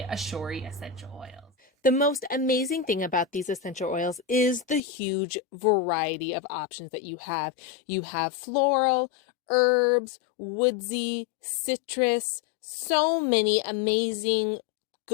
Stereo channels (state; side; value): drops out; right; at 4.8 s